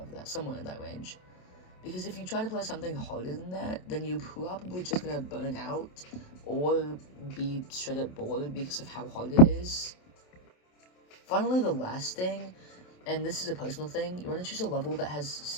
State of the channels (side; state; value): right; late; 27 ms